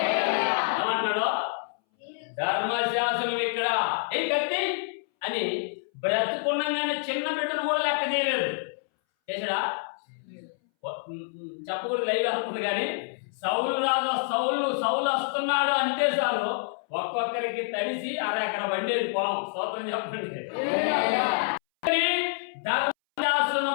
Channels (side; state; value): right; silent; 60 dB below the other